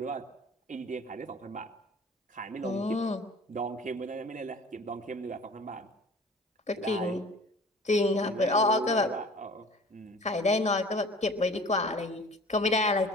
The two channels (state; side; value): normal; both; correlation 0.45